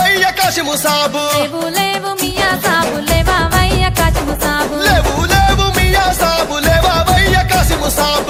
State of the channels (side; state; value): both; identical; correlation 1.00